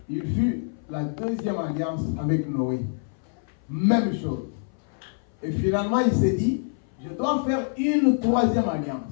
Il fut la deuxième alliance avec Noé. Même chose. Et finalement, il s'est dit, je dois faire une troisième alliance.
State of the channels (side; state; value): right; silent; 58 dB below the other